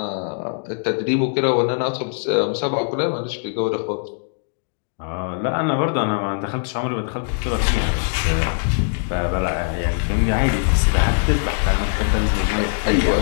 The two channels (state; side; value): silent; right; digital silence